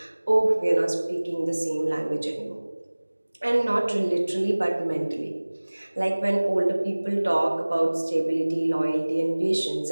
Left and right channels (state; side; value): inverted; both; correlation -1.00